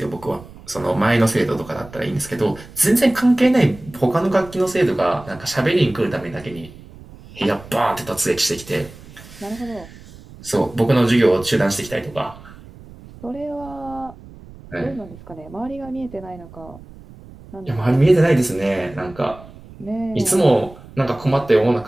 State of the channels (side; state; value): right; noise; rumble, 19 dB below the sound